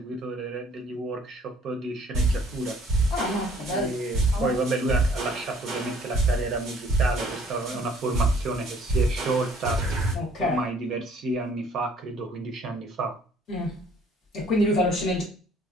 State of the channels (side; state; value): both; normal; correlation 0.59